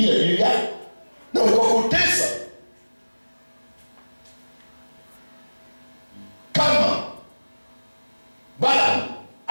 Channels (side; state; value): both; inverted; correlation -1.00